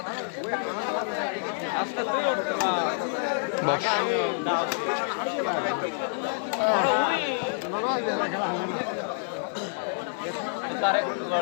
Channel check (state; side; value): silent; right; digital silence